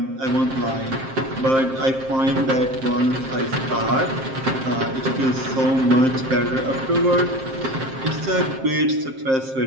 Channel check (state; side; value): late; left; 7.6 ms